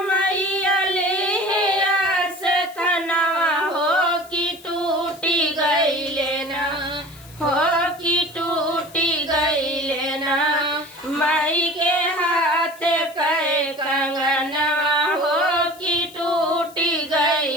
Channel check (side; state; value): left; noise; hiss, 22 dB below the sound